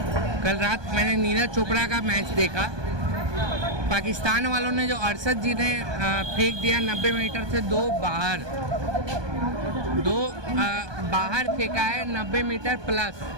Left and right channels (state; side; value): late; left; 1.2 ms